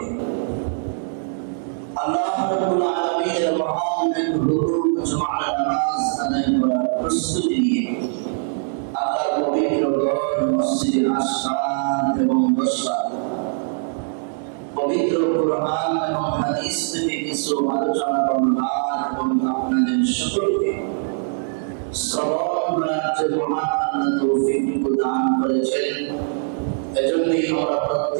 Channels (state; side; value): silent; left; digital silence